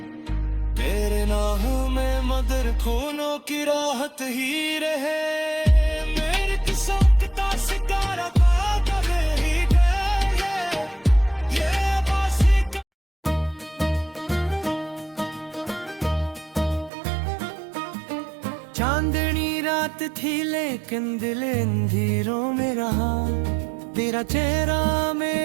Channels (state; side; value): drops out; left; at 16.9 s